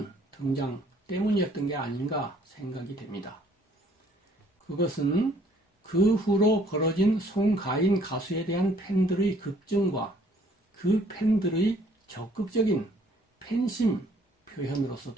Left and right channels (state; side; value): normal; both; correlation 0.61